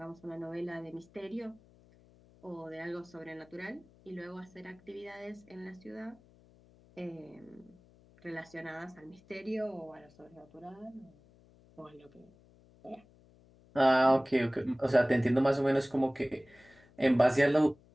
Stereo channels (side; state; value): left; noise; hum, 27 dB below the sound